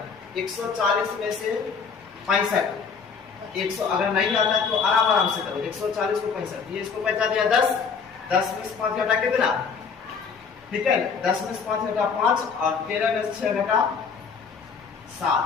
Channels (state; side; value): quieter; right; 5.8 dB